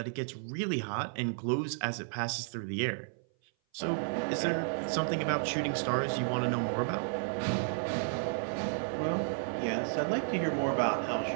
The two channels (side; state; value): left; silent; 56 dB below the other